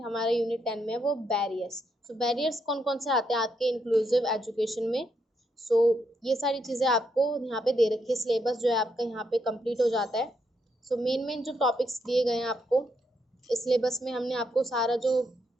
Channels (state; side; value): normal; both; correlation 0.78